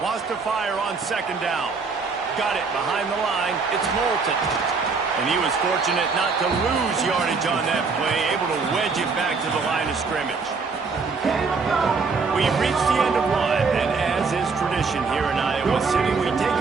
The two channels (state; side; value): quieter; left; 4.7 dB